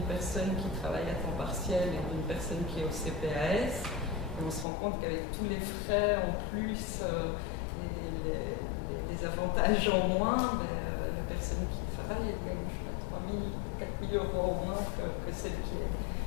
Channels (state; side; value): drops out; right; at 4.7 s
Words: personne qui travaille à temps partiel et d'une personne qui est au CPAS. Et on se rend compte qu'avec tous les frais en plus et les avantages en moins, ben, la personne qui travaille, elle gagne 3 000, 4 000 euros au moins que celle